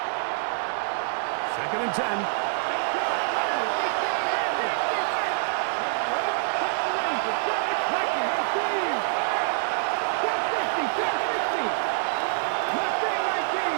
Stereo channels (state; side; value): silent; left; digital silence